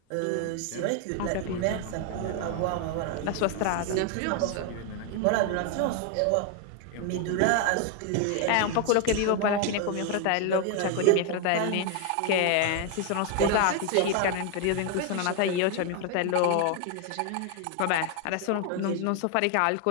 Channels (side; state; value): both; different; correlation 0.00